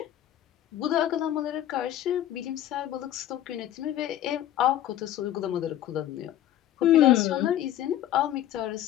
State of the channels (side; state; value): right; quieter; 12.2 dB